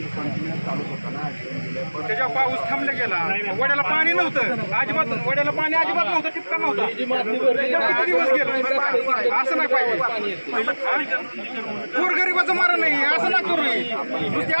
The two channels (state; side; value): inverted; both; correlation -1.00